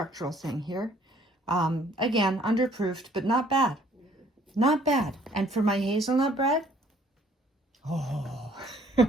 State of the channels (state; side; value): normal; both; correlation 0.60